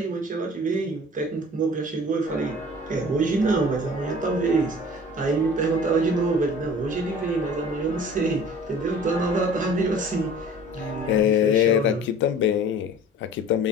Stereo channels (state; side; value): normal; both; correlation 0.45